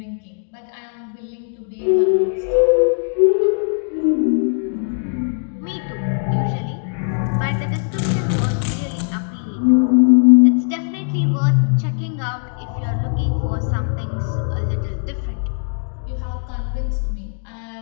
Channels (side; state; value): right; silent; 63 dB below the other